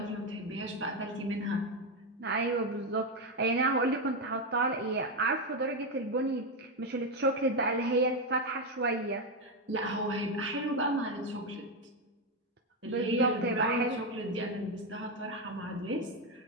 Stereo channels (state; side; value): normal; both; correlation 0.08